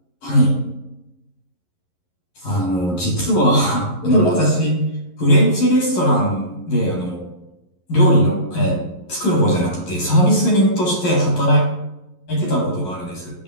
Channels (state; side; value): late; right; 11 ms